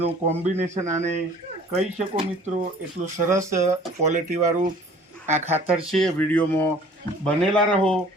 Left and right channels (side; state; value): both; normal; correlation 0.51